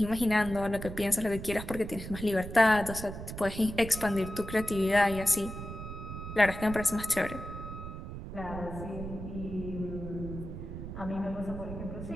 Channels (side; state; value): right; noise; rumble, 9 dB below the sound